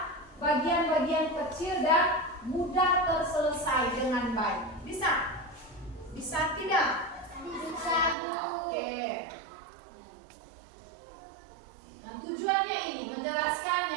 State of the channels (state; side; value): drops out; left; at 8.2 s